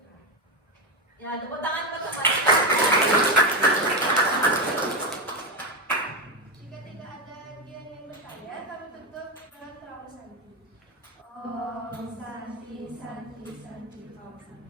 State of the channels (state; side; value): normal; both; correlation 0.10